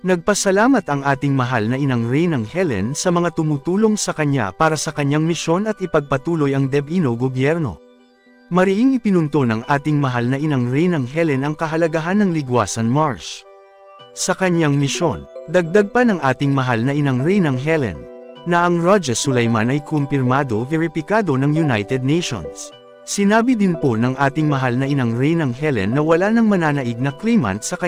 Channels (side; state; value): both; identical; correlation 1.00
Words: Nagpasalamat ang ating mahal na Inang Reynang Helen sa mga tumutulong sa kanya para sa kanyang misyon at ipagpatuloy ang DepEno gobyerno. Mariing ipinunto ng ating mahal na Inang Reynang Helen ang kahalagahan ng Ligwasan March. Sa kanyang misyon, dagdag pa ng ating mahal na Inang Reynang Helen, na ang Raja Sulaiman ay kumpirmado veripikado ng United Nations. Sinabi din po ng ating mahal na Inang Reynang Helen na wala nang mananaig na claimant sa